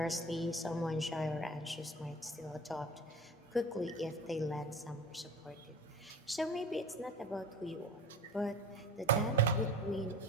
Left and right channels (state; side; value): normal; both; correlation 0.38